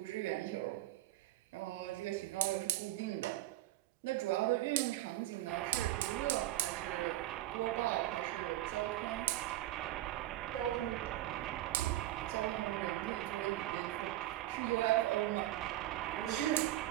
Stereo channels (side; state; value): left; quieter; 15.2 dB